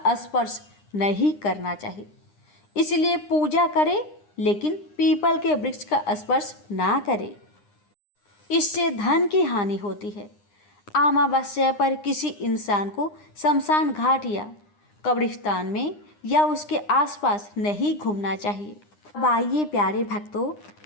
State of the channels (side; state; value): right; late; 9.8 ms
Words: स्पर्श नहीं करना चाहिए। इसलिए पूजा करें लेकिन पीपल के वृक्ष का स्पर्श ना करें, इससे धन की हानि होती है। अमावस्या पर किसी इंसान को शमशान घाट या कब्रिस्तान में या उसके आसपास नहीं घूमना चाहिए। अब आइए प्यारे भक्तों,